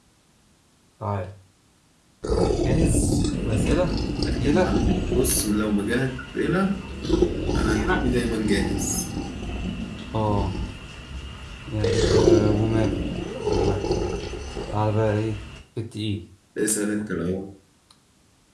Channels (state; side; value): identical; both; correlation 1.00